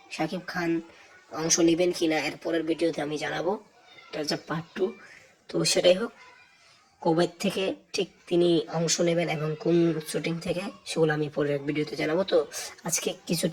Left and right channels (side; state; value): both; identical; correlation 1.00